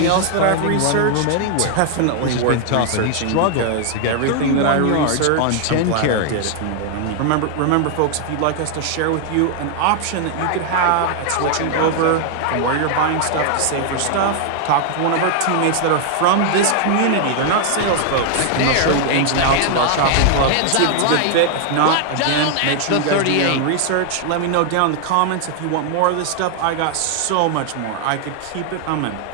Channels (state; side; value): different; both; correlation 0.00